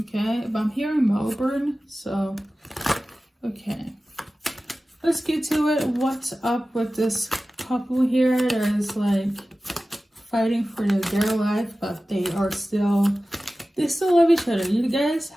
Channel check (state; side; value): normal; both; correlation 0.96